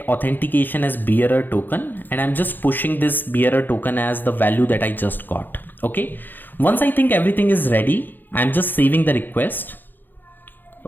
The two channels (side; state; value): right; late; 0.090 ms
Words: authentication as bearer token. And I'm just pushing this bearer token as the value that I just got. Okay. Once I think everything is ready, I'm just saving the request.